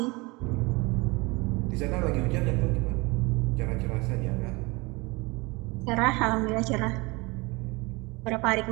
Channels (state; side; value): quieter; left; 25.4 dB